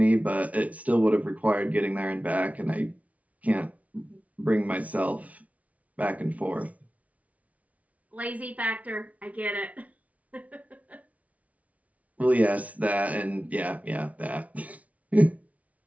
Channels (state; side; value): late; left; 0.069 ms